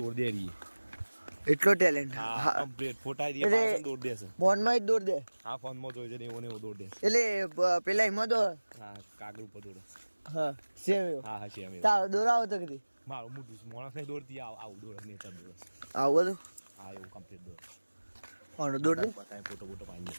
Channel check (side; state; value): both; inverted; correlation -1.00